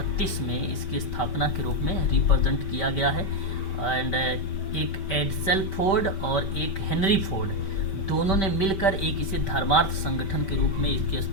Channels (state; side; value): late; right; 5.1 ms